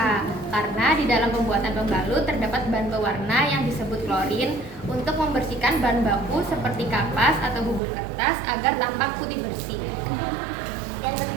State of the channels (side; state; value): left; drops out; at 7.8 s